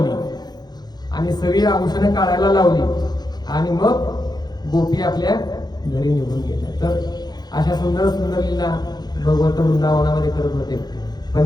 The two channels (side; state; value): right; late; 0.20 ms